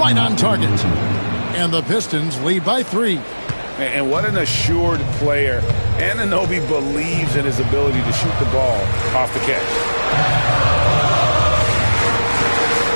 on target. And the Pistons lead by 3. And what an assured player. Anunoby believes in his ability to shoot the ball off the catch.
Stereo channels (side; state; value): both; inverted; correlation -1.00